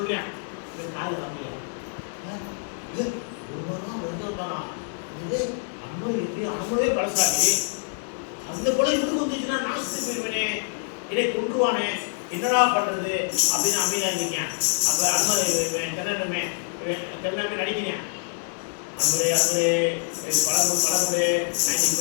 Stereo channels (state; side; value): silent; right; digital silence